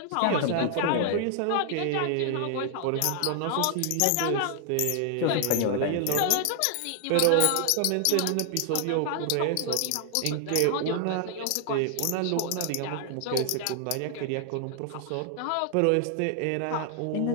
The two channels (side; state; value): both; different; correlation 0.00